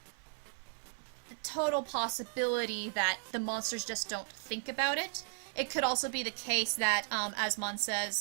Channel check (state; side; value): silent; left; digital silence